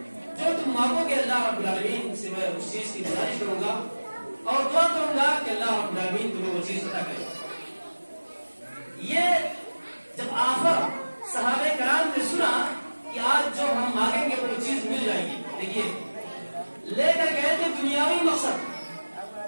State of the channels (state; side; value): inverted; both; correlation -1.00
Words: جو تم مانگو گے، اللہ رب العالمین سے میں اس چیز کی گزارش کروں گا اور دعا کروں گا کہ اللہ رب العالمین تمہیں وہ چیز عطا کرے۔ یہ جب آخر صحابہ کرام نے سنا کہ آج جو ہم مانگیں گے وہ چیز مل دیکھیے لے کر گئے تھے دنیاوی مقصد.